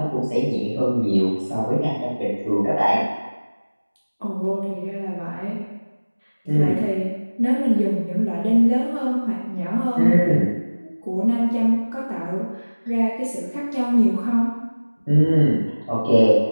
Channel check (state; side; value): inverted; both; correlation -1.00